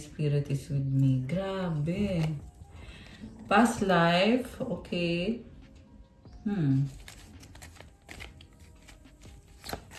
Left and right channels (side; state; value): both; identical; correlation 1.00